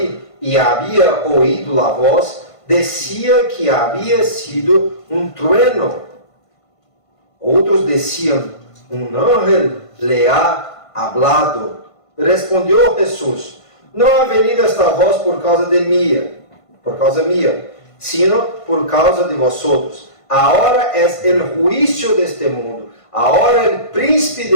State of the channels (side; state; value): right; late; 1.5 ms